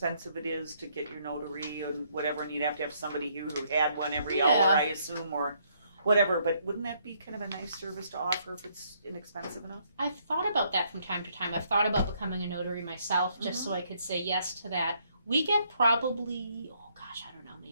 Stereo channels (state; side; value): inverted; both; correlation -0.70